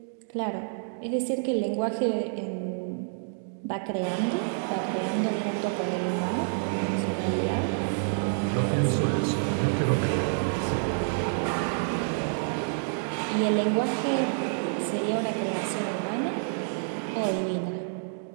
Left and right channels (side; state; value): left; silent; digital silence